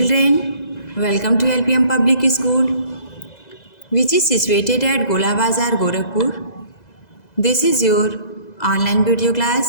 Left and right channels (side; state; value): right; late; 2.0 ms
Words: welcome to LPM Public School, which is situated at Gola Bazar, Gorakhpur. This is your online video